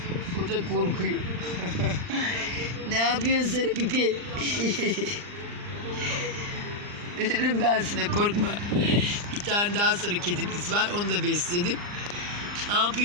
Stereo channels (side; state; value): left; late; 39 ms